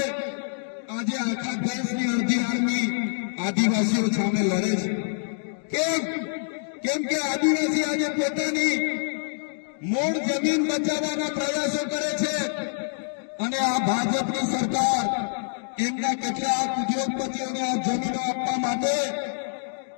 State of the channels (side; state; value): right; silent; digital silence